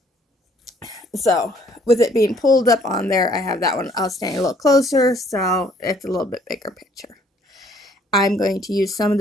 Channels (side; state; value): both; normal; correlation 0.62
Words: so with it being pulled up on there, I have that one. I'll stand a little closer, so it's a little bit bigger picture. I'm going to use some of